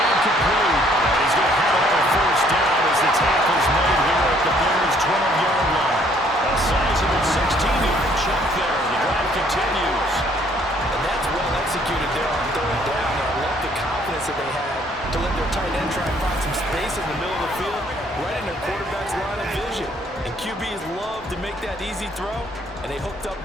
complete. He's going to have a first down as the tackle's made here at the Bears' 12-yard line. A sizable 16-yard chunk there. The drive continues. And that's well executed there on 3rd down. And I love the confidence that they had to let their tight end try and find some space in the middle of the field, right in their quarterback's line of vision. And QBs love to make that easy throw, and they hooked up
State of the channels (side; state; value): both; normal; correlation 0.63